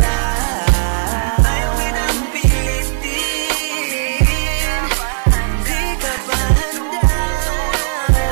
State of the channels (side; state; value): left; silent; 69 dB below the other